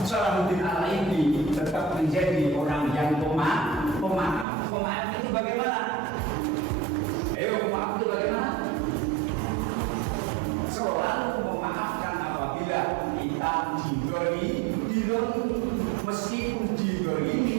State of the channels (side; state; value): left; drops out; at 4.5 s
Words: Salahuddin Al-Ayyubi tetap menjadi orang yang pemaaf. Pemaaf itu bagaimana? Ayo, pemaaf itu bagaimana? Selalu memaafkan apabila kita diberi, meskipun